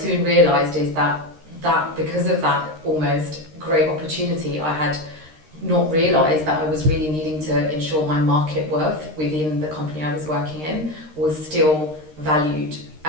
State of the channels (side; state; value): left; late; 13 ms